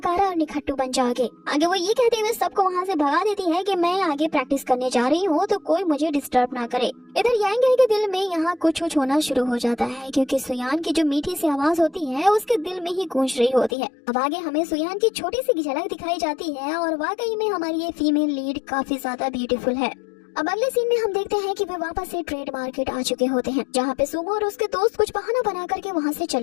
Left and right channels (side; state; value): right; drops out; at 13.7 s